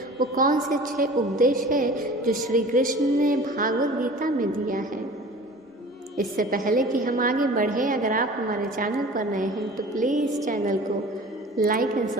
वो कौन से 6 उपदेश है जो श्री कृष्ण ने भागवत गीता में दिया है। इससे पहले कि हम आगे बढ़े, अगर आप हमारे चैनल पर नए हैं तो प्लीज़ चैनल को लाइक एंड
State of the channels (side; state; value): both; normal; correlation 0.42